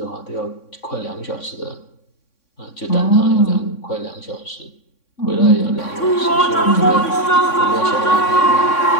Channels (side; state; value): right; late; 3.6 ms